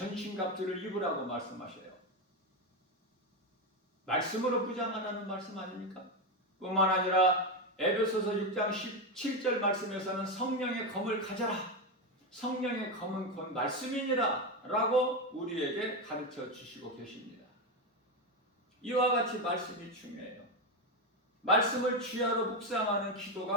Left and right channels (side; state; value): both; normal; correlation 0.11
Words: 입으라고 말씀하셔요. 말씀으로 부장하라는 말씀 아닙니까? 뿐만 아니라 에베소서 6장 17절 말씀에서는 성령의 검을 가져라. 성령의 검은 곧 말씀이니라 라고 우리에게 가르쳐 주시고 계십니다. 이와 같이 말씀이 중요해요. 말씀을 주야로 묵상하는